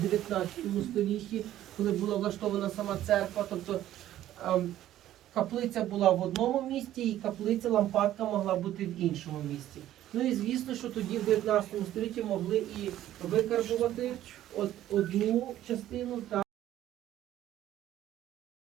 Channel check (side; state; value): left; quieter; 12.9 dB